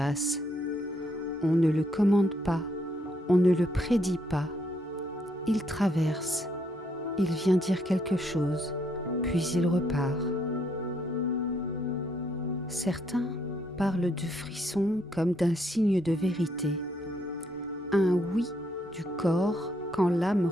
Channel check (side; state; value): both; normal; correlation 0.73